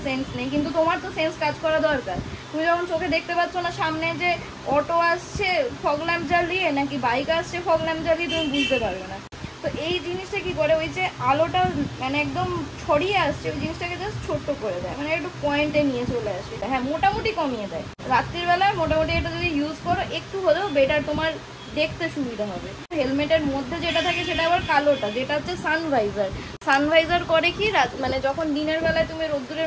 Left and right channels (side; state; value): both; identical; correlation 1.00